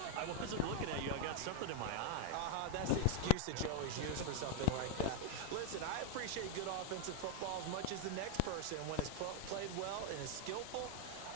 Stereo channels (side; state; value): both; different; correlation 0.00